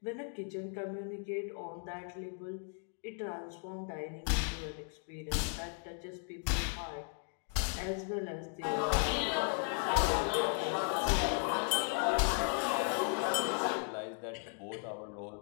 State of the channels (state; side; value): silent; right; 54 dB below the other